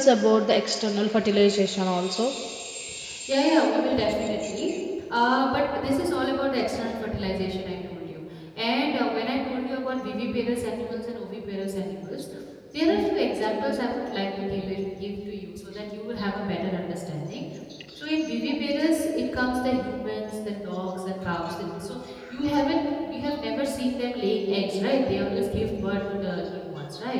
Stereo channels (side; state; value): both; identical; correlation 1.00